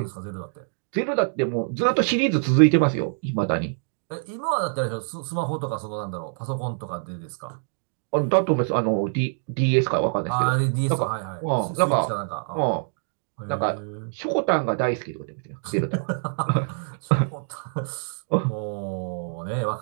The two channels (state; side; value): silent; left; digital silence